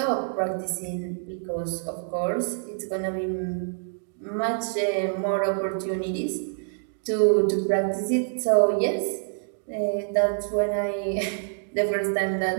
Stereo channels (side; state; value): left; silent; digital silence